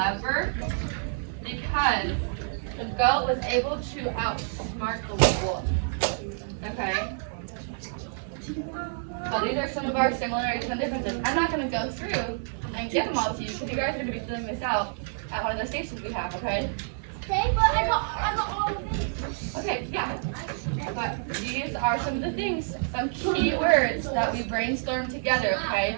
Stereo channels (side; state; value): left; silent; 59 dB below the other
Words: because the goat was able to outsmart the wolf. Okay? So these are some of our similarities and differences. I'm not going to go through and give them all to you because you guys are going to be filling this out at one of the stations we have, okay? I got all of it. Okay, yeah. But these are some of the things, some key words that we brainstormed together, okay?